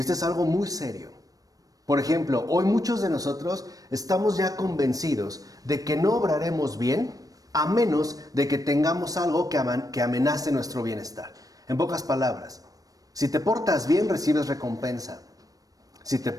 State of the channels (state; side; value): late; left; 0.18 ms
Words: es algo muy serio. Por ejemplo, hoy muchos de nosotros estamos ya convencidos de que no obraremos bien a menos de que tengamos algo que amenace nuestro bienestar. En pocas palabras, si te portas bien, recibes recompensa. Si te